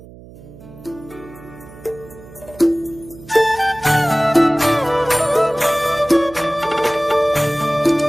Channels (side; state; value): right; noise; hum, 20 dB below the sound